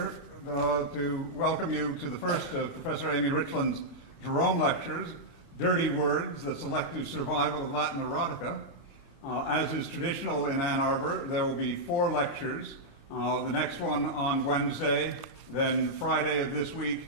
to welcome you to the first of Professor Amy Richland's Jerome Lectures, Dirty Words, the Selective Survival of Latin Erotica. As is traditional in Ann Arbor, there will be 4 lectures, the next one on Wednesday, then Friday of this week,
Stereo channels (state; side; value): late; right; 29 ms